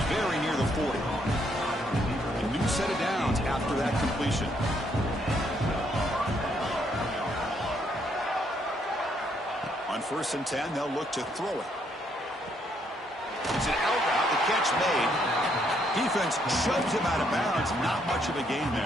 very near the 40. A new set of downs after that completion. On 1st and 10, they'll look to throw it. It's an out route, the catch made. Defense shoves him out of bounds. Not much of a gain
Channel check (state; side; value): normal; both; correlation 0.72